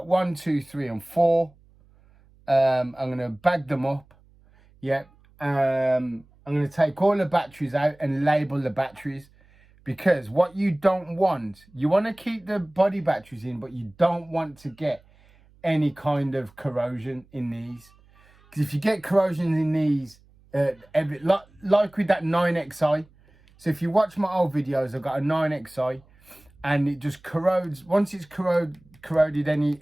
1, 2, 3 and 4. I'm going to bag them up. Yep. I'm going to take all the batteries out and label the batteries. Because what you don't want, you want to keep the body batteries in, but you don't want to get any kind of corrosion in these. Because if you get corrosion in these, like with that 9XI, so if you watch my old videos, I've got a 9XI, and it just corrodes. Once it's corroded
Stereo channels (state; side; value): noise; right; hum, 29 dB below the sound